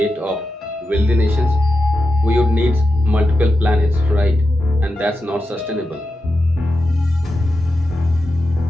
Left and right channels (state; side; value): normal; both; correlation 0.89